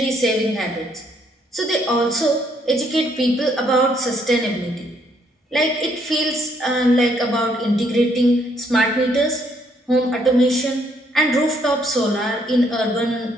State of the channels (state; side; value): normal; both; correlation 0.70